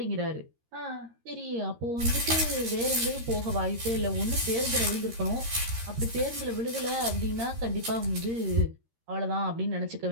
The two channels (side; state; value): left; late; 13 ms